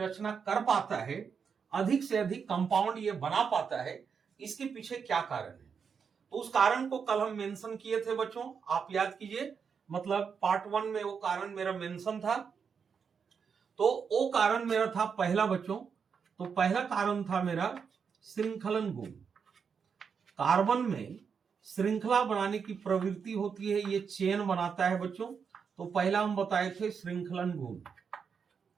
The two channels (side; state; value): left; quieter; 6.3 dB